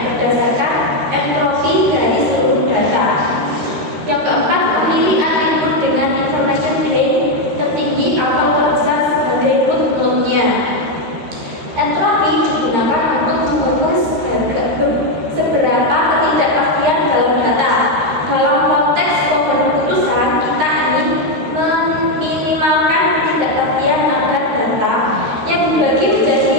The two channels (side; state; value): left; late; 13 ms